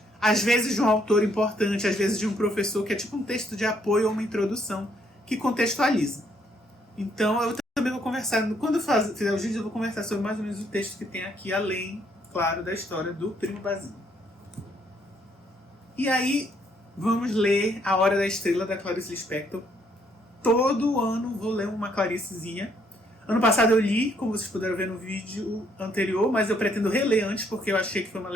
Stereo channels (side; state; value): both; normal; correlation 0.70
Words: às vezes de um autor importante, às vezes de um professor, que é tipo um texto de apoio ou uma introdução, que contextualiza. Então eu também vou conversar, quando eu fizer os vídeos, eu vou conversar sobre mais ou menos o texto que tem aqui, além, claro, da história do Primo Basílio. E aí, vamos ler A Hora da Estrela, da Clarice Lispector. Todo ano vou ler uma Claricezinha. Ano passado eu li, como vocês puderam ver no vídeo anterior, mas eu pretendo reler antes, porque eu achei que foi uma